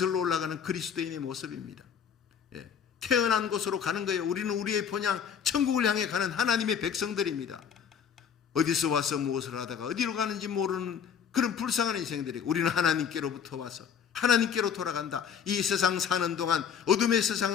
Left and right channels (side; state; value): right; quieter; 7.6 dB